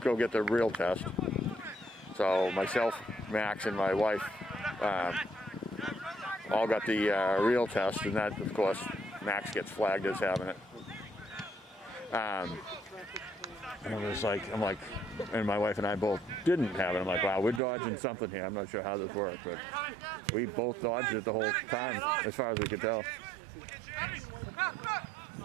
go get the real test. So myself, Max, and my wife all got the real test, and that, of course, Max gets flagged as having it. And I'm like, and my wife and I both didn't have it. I'm like, wow, we're dodging something here. I'm not sure how this worked, but we both dodged it the whole time, as far as we could tell.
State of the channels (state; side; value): drops out; left; at 17.6 s